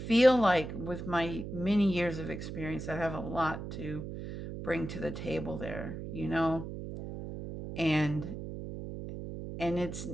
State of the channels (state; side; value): noise; right; hum, 8 dB below the sound